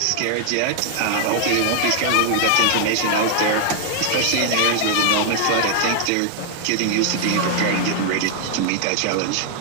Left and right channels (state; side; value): different; both; correlation 0.00